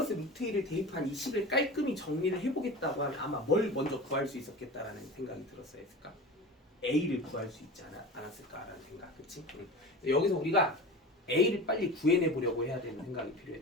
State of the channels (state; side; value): normal; both; correlation 0.32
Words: 루트 2를 대입한 이 식을 깔끔히 정리를 해보겠다고 하면 아마 뭘 먼저 구할 수 있었겠다라는 생각이 들었어야 했을까? a를 구할 수 있지 않았을까라는 생각, 그치? 여기서 우리가 a를 빨리 구해내보려고 해야 되는 생각이